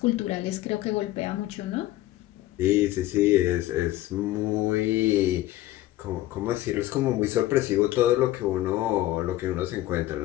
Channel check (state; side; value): quieter; right; 15.6 dB